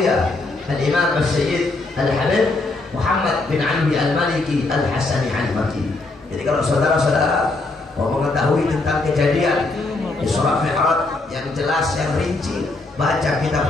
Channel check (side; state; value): right; quieter; 3.2 dB